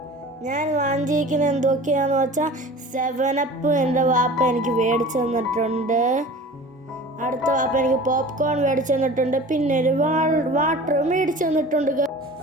ഞാൻ വാങ്ങിയിരിക്കുന്നത് എന്തൊക്കെയാണെന്ന് വെച്ചാൽ 7up എൻ്റെ വാപ്പ എനിക്ക് മേടിച്ചു തന്നിട്ടുണ്ട്. അടുത്ത വാപ്പ എനിക്ക് പോപ്കോൺ മേടിച്ചു തന്നിട്ടുണ്ട്. പിന്നെ ഒരു വാട്ടർ മേടിച്ചു തന്നിട്ടുണ്ട്.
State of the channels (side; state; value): both; normal; correlation 0.40